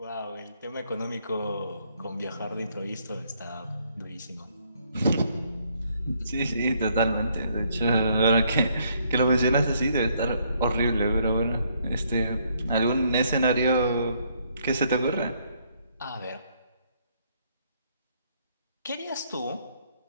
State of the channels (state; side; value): inverted; both; correlation -0.69